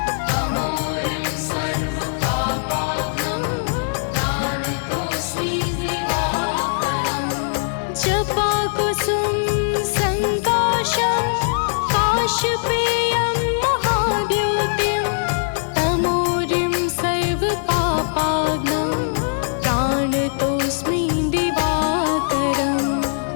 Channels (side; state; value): right; silent; 59 dB below the other